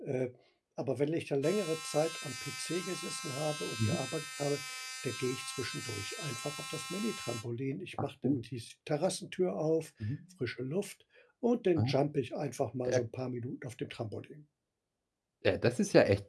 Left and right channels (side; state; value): both; identical; correlation 1.00